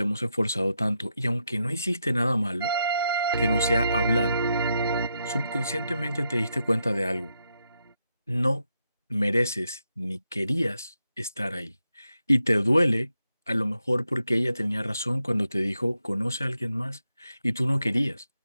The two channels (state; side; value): inverted; both; correlation -0.83